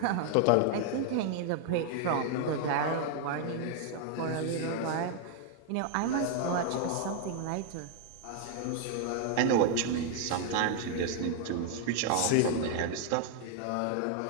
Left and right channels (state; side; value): different; both; correlation 0.00